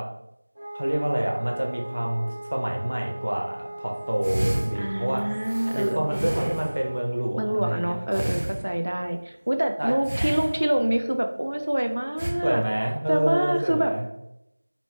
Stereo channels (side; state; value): both; inverted; correlation -1.00